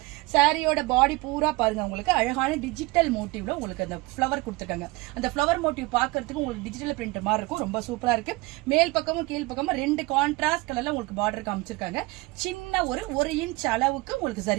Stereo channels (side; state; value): left; quieter; 22.8 dB